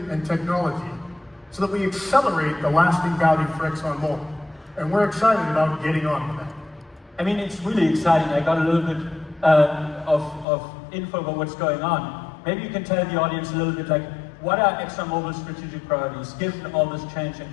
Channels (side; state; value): right; drops out; at 10.5 s